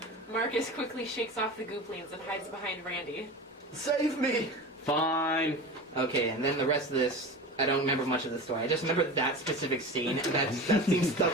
Marcus quickly shakes off the gooplings and hides behind Randy. Save me! Fine. Okay, and then the rest of this, I don't remember much of the story. I just remember that specific scene, and that scene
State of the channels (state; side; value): normal; both; correlation 0.31